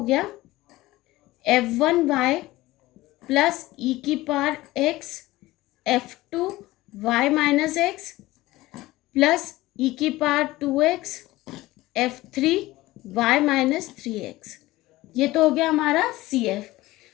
गया F1y प्लस e की power x F2y minus x plus e की power 2x F3y minus 3x। ये तो हो गया हमारा CF।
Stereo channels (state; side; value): quieter; right; 18.1 dB